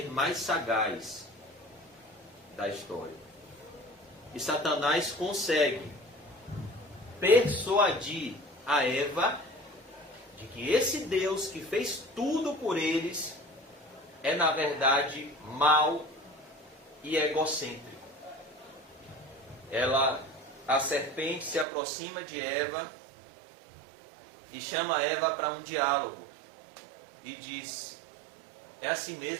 mais sagaz da história. E Satanás consegue persuadir a Eva de que esse Deus que fez tudo por eles é, na verdade, mau e egocêntrico. A serpente se aproxima de Eva e chama Eva para um diálogo e diz: é assim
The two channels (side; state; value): left; drops out; at 21.7 s